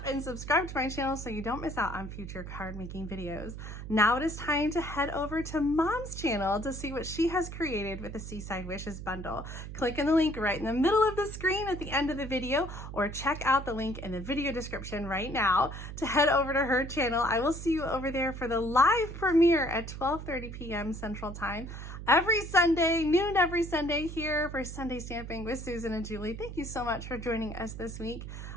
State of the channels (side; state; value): right; noise; hum, 9 dB below the sound